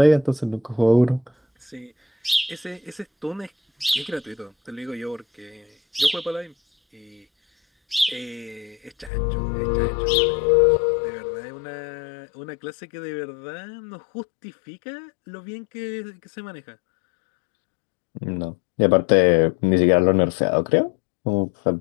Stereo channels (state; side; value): drops out; right; at 9.1 s